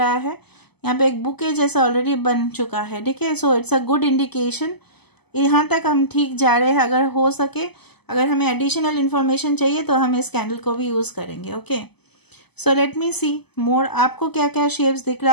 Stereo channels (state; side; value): late; right; 0.98 ms